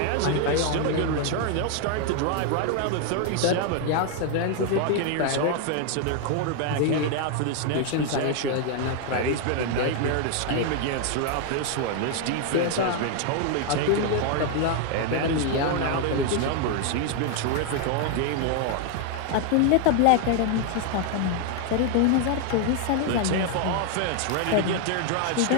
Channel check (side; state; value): both; different; correlation 0.00